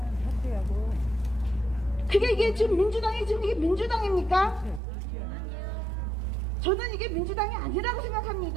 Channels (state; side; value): drops out; left; at 4.8 s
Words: 사퇴하고 그게 이게 지금 민주당이 지금 이게 민주당입니까? 저는 이게 민주당이 아니라고